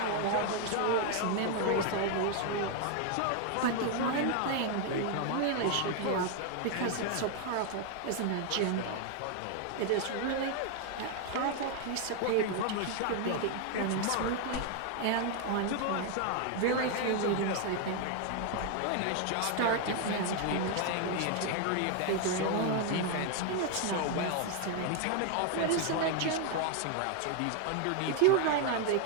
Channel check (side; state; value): both; different; correlation 0.00